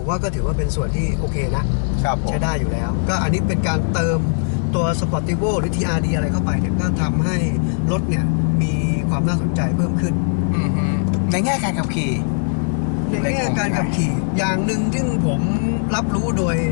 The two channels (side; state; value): right; silent; digital silence